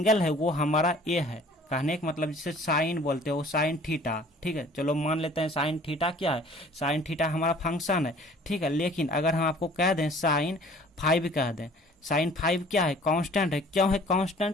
है वो हमारा ए है। कहने का मतलब जिसे साइन बोलते हो, साइन थीटा। ठीक है, चलो मान लेते हैं साइन थीटा क्या है, साइन थीटा हमारा फंक्शन है। ठीक है, लेकिन अगर हम आपको कह दें साइन 5 कह दें, साइन 5 क्या है, कांस्टेंट है। क्यों है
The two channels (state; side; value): normal; both; correlation 0.51